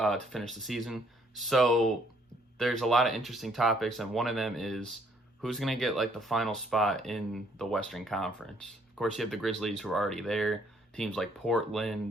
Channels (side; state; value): both; normal; correlation 0.66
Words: finish the season. So there's a lot of interesting topics, and one of them is who's going to get like the final spot in the Western Conference. Of course, you have the Grizzlies who are already there. Teams like